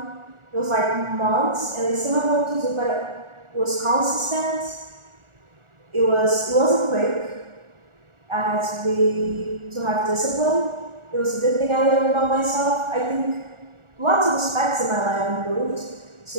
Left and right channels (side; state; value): left; late; 1.4 ms